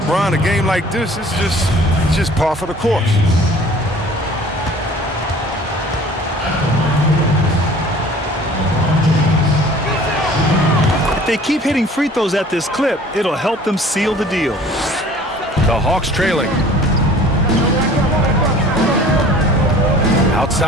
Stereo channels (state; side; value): normal; both; correlation 0.49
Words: a game like this, it's just par for the course. If they keep hitting free throws at this clip, it'll help them seal the deal. The Hawks trailing.